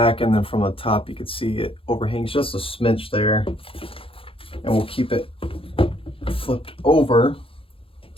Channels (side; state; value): right; late; 0.26 ms